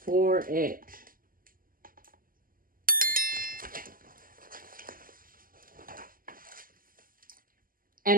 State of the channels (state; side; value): late; left; 0.41 ms